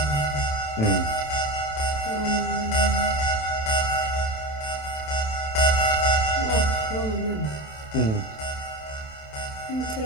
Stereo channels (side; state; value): right; late; 27 ms